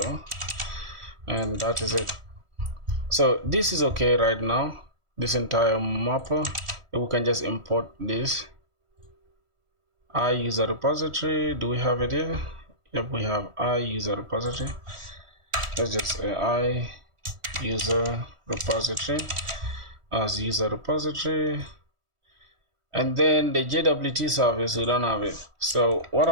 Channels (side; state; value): left; late; 1.5 ms